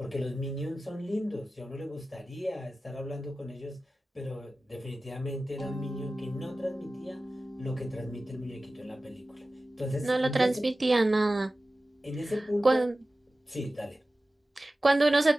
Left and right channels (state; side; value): normal; both; correlation 0.96